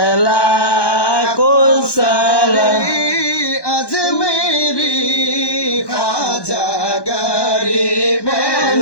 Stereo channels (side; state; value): right; late; 1.1 ms